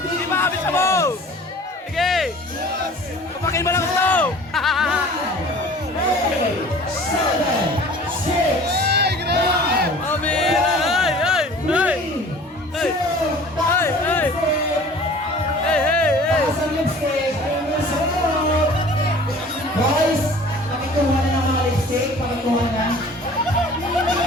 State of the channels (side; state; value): both; normal; correlation 0.46